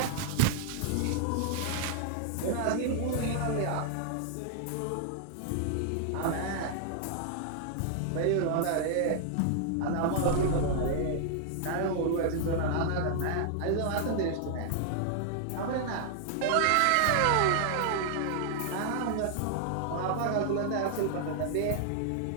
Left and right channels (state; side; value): different; both; correlation 0.00